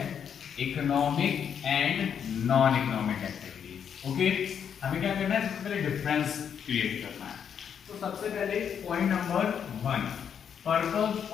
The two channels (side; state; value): right; quieter; 7.9 dB